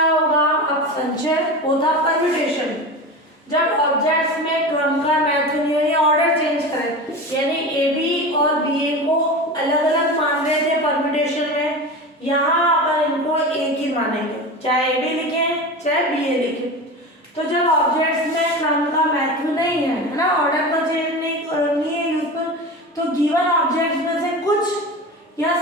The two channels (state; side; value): normal; both; correlation 0.28